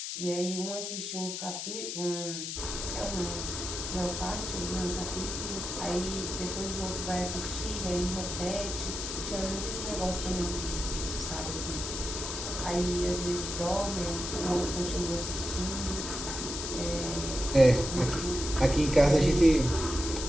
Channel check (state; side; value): noise; left; hiss, 5 dB below the sound